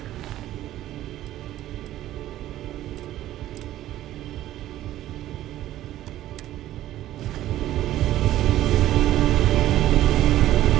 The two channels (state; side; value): quieter; left; 13.8 dB